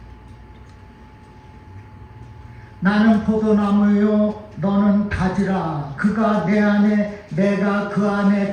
나는 포도나무요 너는 가지라 그가 내 안에 내가 그 안에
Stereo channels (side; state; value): both; identical; correlation 1.00